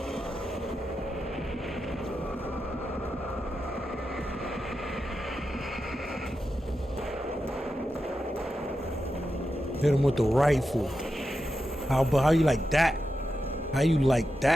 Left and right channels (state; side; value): normal; both; correlation 0.89